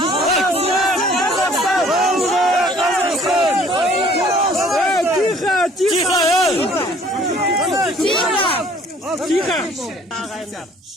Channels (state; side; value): normal; both; correlation 0.56